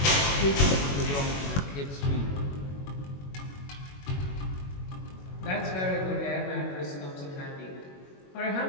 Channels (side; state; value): right; late; 21 ms